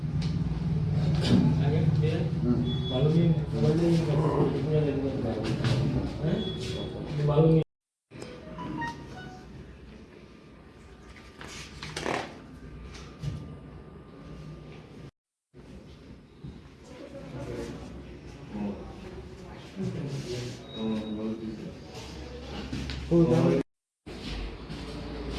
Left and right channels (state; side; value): identical; both; correlation 1.00